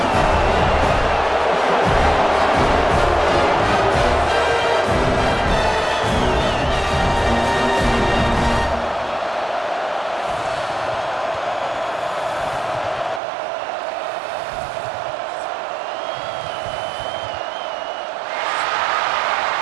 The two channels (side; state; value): left; drops out; at 13.2 s